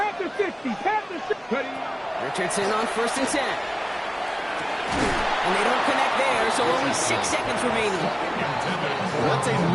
60, Panther 60. Richardson on 1st and 10. And they don't connect there, so only 6 seconds remaining. Well, that's a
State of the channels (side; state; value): both; identical; correlation 1.00